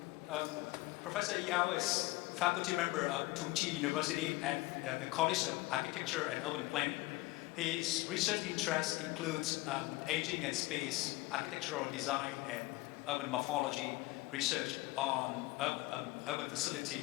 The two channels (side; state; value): right; quieter; 20.5 dB